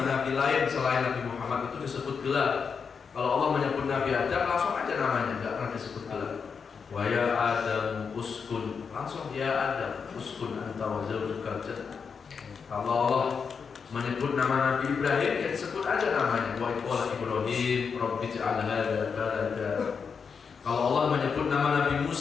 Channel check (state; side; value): quieter; right; 5.9 dB